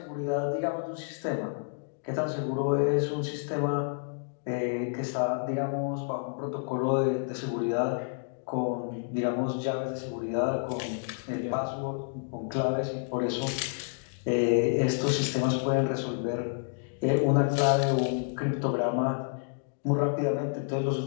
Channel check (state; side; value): silent; right; digital silence